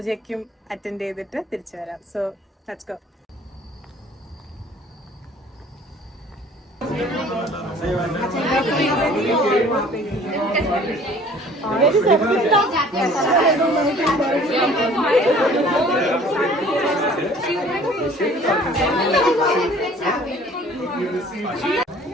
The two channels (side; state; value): both; normal; correlation 0.52